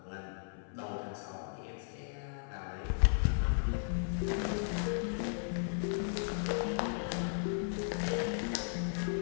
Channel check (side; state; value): right; silent; 54 dB below the other